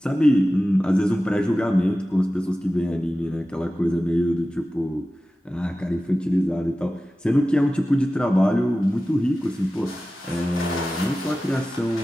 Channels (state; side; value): normal; both; correlation 0.95